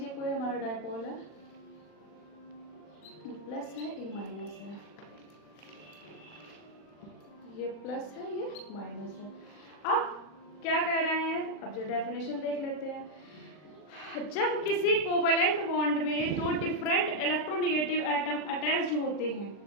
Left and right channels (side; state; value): right; late; 39 ms